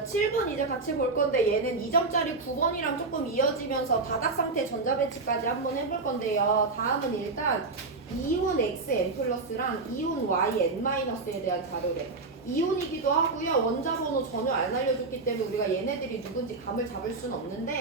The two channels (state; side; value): quieter; left; 3.8 dB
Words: 7번 이제 같이 볼 건데 얘는 2점짜리 9번이랑 조금 이어지면서 바닥 상태 전자배치까지 한번 해볼 건데요. 다음은 일단 이온 XN 플러스랑 이온 YN 마이너스에 대한 자료래. 이온이기도 하고요. 원자 번호 전혀 안 알려줬기 때문에 우리가 얘네들이 누군지 감을 잡을 수는